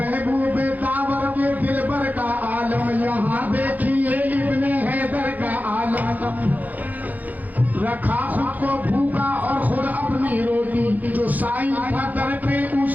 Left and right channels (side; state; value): left; late; 0.080 ms